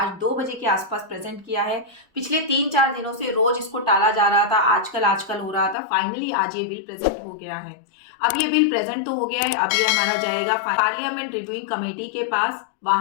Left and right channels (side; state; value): right; drops out; at 5.8 s